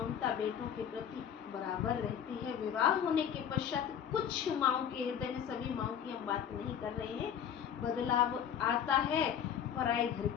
बेटों के प्रति बराबर रहती है। विवाह होने के पश्चात कुछ माँओं के हृदय में, सभी माँओं की हम बात नहीं कर रहे हैं, बदलाव आता है। पराए घर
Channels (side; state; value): right; quieter; 8.8 dB